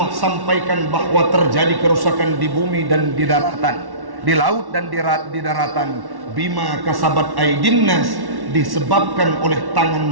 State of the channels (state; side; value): late; left; 1.1 ms